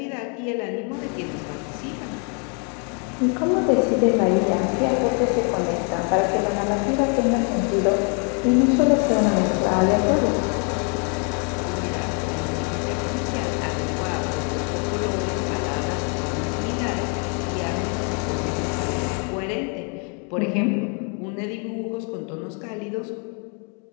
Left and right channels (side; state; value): right; quieter; 38.1 dB